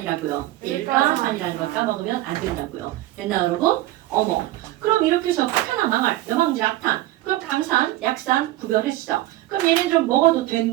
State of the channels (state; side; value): quieter; left; 16.1 dB